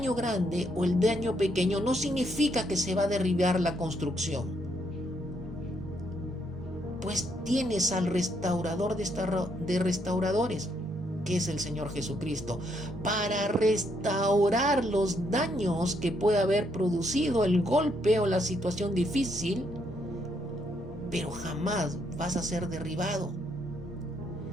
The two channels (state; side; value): normal; both; correlation 0.74